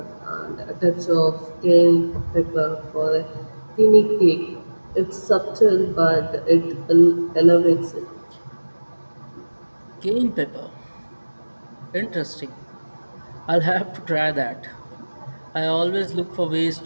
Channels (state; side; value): inverted; both; correlation -1.00